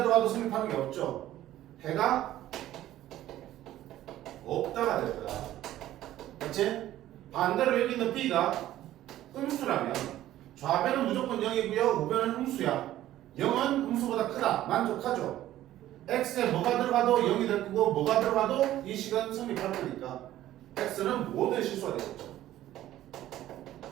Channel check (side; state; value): left; quieter; 13.7 dB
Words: 성립하는 게 없죠. 해가 없다가 될 거야. 그렇지? 반대로 여기 있는 B가 음수라면 좌변은 무조건 0이고요. 우변은 음수야. 0은 음수보다 크다. 만족하죠? X에 뭐가 들어가도 0이 될 거고 뭐가 들어가도 이 식은 성립할 거니까 X는 모든 실수가 되겠죠.